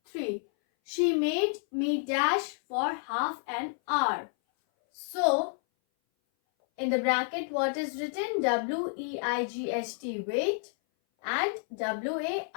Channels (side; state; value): right; silent; 57 dB below the other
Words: 3. She made me dash for half an hour. So, in the bracket what is written? W-E-I-G-H-T, wait, and